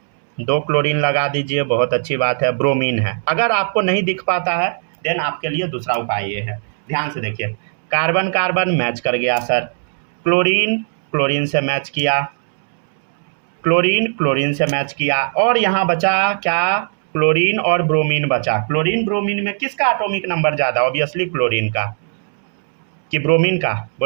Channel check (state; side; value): silent; left; 67 dB below the other